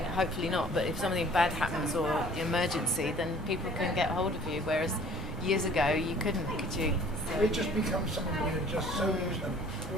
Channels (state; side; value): normal; both; correlation 0.52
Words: not, but if something bad happens or emergency, then people can get hold of you, whereas years ago you couldn't, could you? So it just becomes something we're just so used to. I